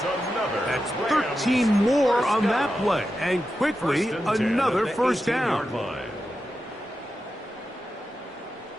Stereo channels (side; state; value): both; normal; correlation 0.90